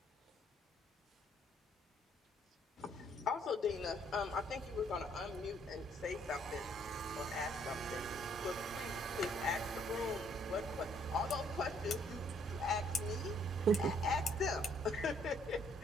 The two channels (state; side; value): normal; both; correlation 0.66